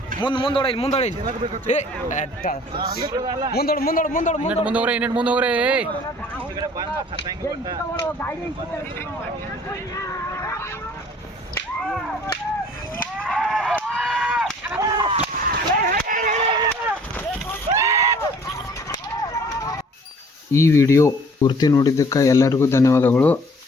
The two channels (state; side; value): normal; both; correlation 0.53